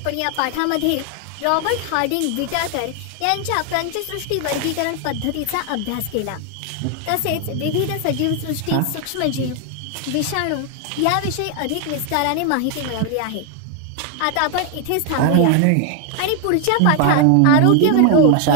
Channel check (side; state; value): both; different; correlation 0.01